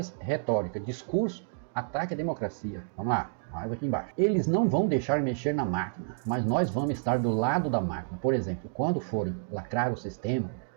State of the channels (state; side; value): silent; left; digital silence